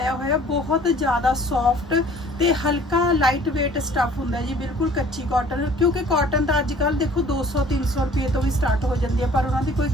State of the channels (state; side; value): normal; both; correlation 0.52